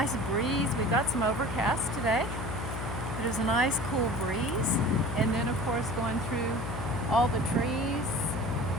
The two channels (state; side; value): noise; left; hum, 5 dB below the sound